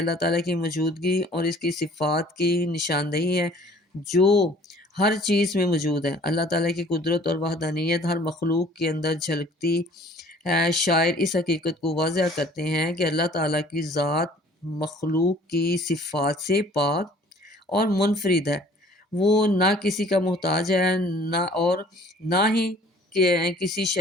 تعالیٰ کی موجودگی اور اس کی صفات کی نشاندہی ہے جو ہر چیز میں موجود ہے۔ اللہ تعالیٰ کی قدرت اور وحدانیت ہر مخلوق کے اندر جھلکتی ہے۔ شاعر اس حقیقت کو واضح کرتے ہیں کہ اللہ تعالیٰ کی ذات مخلوق کی صفات سے پاک اور منفرد ہے۔ وہ نہ کسی کا محتاج ہے نہ ہی کسی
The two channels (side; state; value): both; normal; correlation 0.53